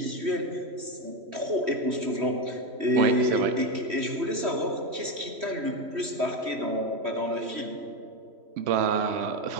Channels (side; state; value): left; late; 3.1 ms